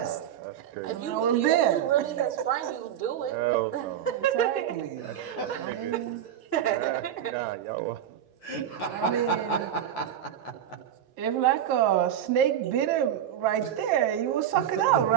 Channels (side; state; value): left; quieter; 10.1 dB